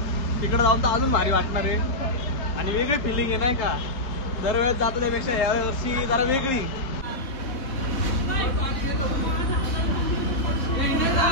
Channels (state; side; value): late; right; 3.7 ms